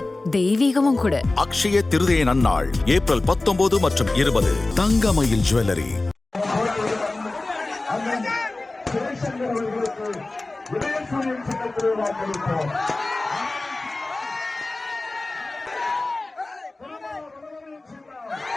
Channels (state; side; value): quieter; right; 3.1 dB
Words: தெய்வீகமும் கூட. அக்ஷய திருதியை நன்னாள் ஏப்ரல் 19 மற்றும் 20. தங்கமயில் ஜுவல்லரி.